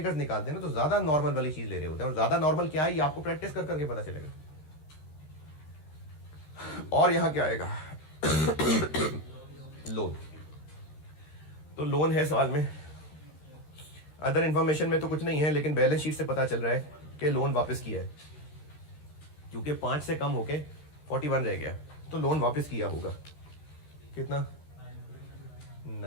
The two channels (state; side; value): late; right; 13 ms